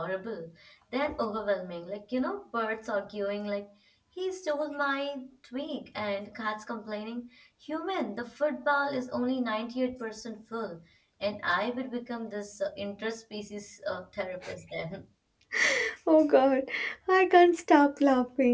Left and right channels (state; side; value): identical; both; correlation 1.00